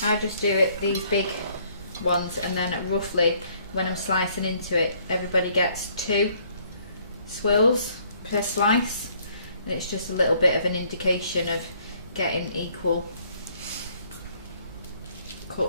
I just do it these big ones, and then roughly when I'm slicing into it, everybody gets 2 swirls per slice, and it's just a little bit of an indication of getting equal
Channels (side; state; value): both; inverted; correlation -0.64